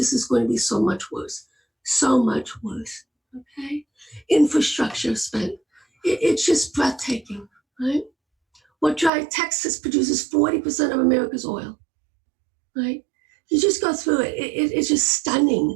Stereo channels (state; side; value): drops out; left; at 9.1 s